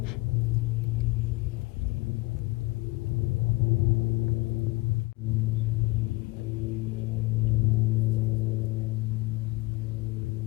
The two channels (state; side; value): quieter; right; 22.4 dB